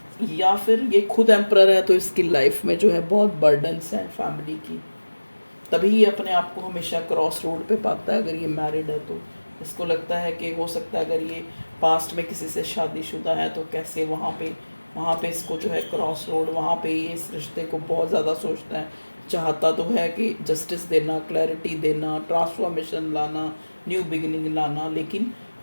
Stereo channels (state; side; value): inverted; both; correlation -1.00